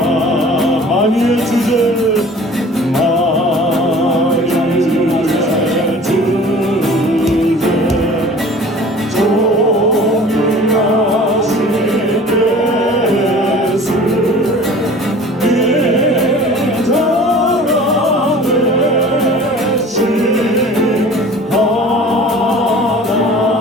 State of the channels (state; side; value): normal; both; correlation 0.45